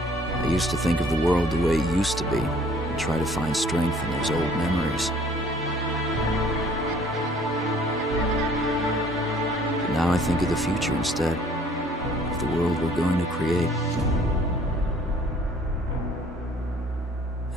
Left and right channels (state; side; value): normal; both; correlation 0.56